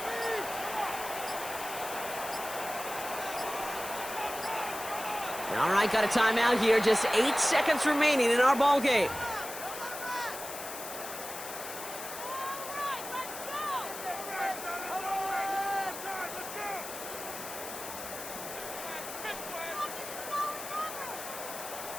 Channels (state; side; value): noise; left; hiss, 9 dB below the sound